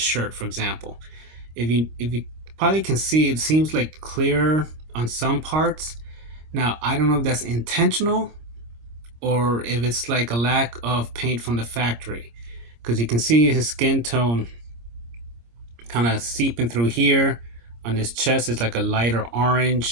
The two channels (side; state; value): left; late; 26 ms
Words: for example. If you probably can see, it seems like clear on some parts. Now I don't know if that's intentional or if it's like a lack of paint from the factory, because you can see his skin tone kind of seeping through here. On his chest it's like a lighter